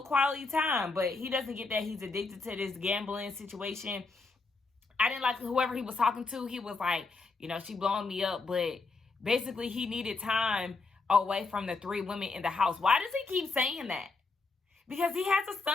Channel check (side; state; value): right; quieter; 3.9 dB